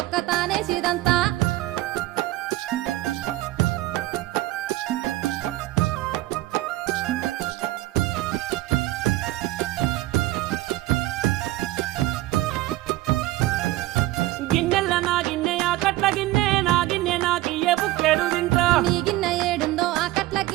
ఒక్క తానేసిదంతా గిన్నెల నా గిన్నె ఆ కట్ల గిన్నె నా గిన్నె నాకియ్య బుక్కెడు తింటా నీ గిన్నె ఏడుందో ఆ కట్ల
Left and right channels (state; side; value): quieter; left; 17.1 dB